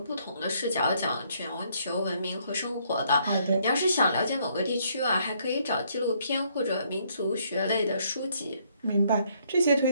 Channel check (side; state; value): both; inverted; correlation -0.69